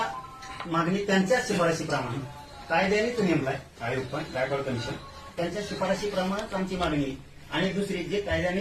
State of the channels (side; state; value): both; identical; correlation 1.00